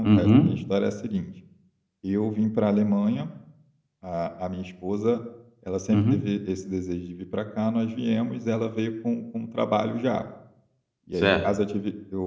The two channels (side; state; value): both; identical; correlation 1.00